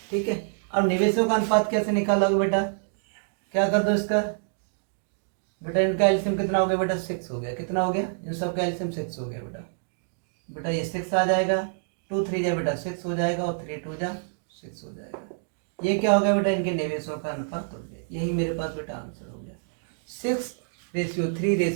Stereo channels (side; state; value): left; silent; digital silence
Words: ठीक है, अब निवेशों का अनुपात कैसे निकालोगे बेटा, क्या कर दो इसका बेटा, इनका एलसीएम कितना हो गया बेटा 6 हो गया। कितना हो गया इन सब का एलसीएम 6 हो गया बेटा। बेटा ये 6 आ जाएगा, 2 3 जा बेटा 6 हो जाएगा, और 3 2 जा 6 हो जाएगा। ये क्या हो गया बेटा इनके निवेशों का अनुपात हो गया। यही मेरे पास बेटा आंसर हो गया